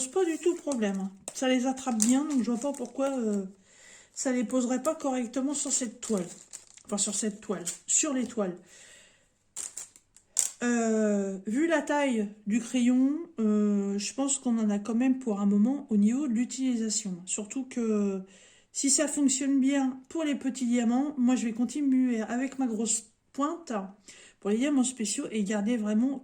pas du tout problème. Hein. Ça les attrape bien, donc je vois pas pourquoi ça les poserait pas correctement sur cette toile. Enfin, sur cette toile, sur les toiles. Vu la taille du crayon, je pense qu'on en a quand même pour un moment au niveau de l'utilisation. Surtout que si ça fonctionne bien pour les petits diamants, moi je vais continuer avec ma grosse pointe pour les diamants spéciaux et garder vraiment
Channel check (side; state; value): both; identical; correlation 1.00